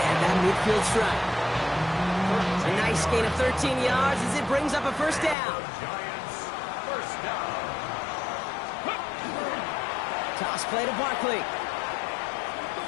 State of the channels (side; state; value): right; drops out; at 5.4 s